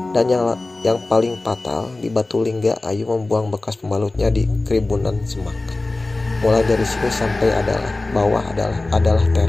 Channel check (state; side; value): quieter; right; 3.1 dB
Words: dan yang paling fatal di Batulingga, Ayu membuang bekas pembalutnya di keribunan semak. Mulai dari sini sampai bawah adalah